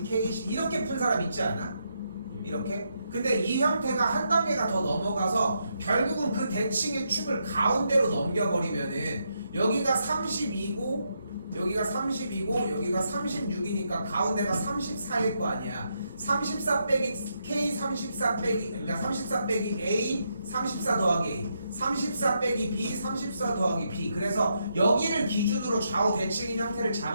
K. 이렇게 푼 사람 있지 않아? 이렇게? 근데 이 형태가 한 단계가 더 넘어가서 결국은 그 대칭의 축을 가운데로 넘겨버리면은 여기가 32고 여기가 32고 여기가 36이니까 가운데가 34일 거 아니야. 34 빼기 K 34 빼기 그러니까 34 빼기 A 34 더하기 A 34 빼기 B 34 더하기 B. 그래서 여기를 기준으로 좌우 대칭인 형태를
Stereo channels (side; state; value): both; inverted; correlation -0.80